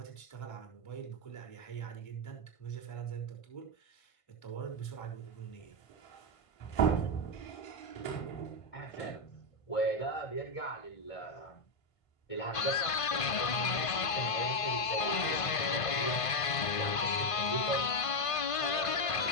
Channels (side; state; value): right; late; 1.5 ms